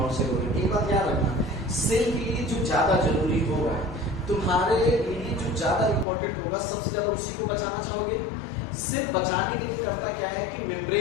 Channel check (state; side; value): drops out; right; at 6.1 s